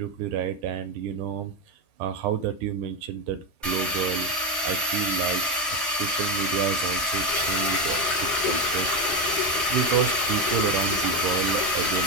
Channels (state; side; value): normal; both; correlation 0.11